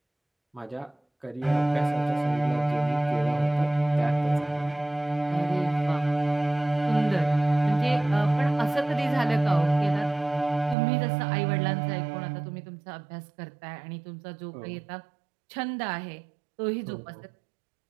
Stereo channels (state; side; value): drops out; left; at 10.8 s